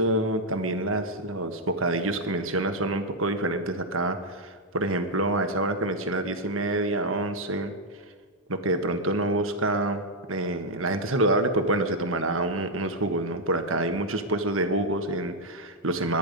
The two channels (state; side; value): normal; both; correlation -0.01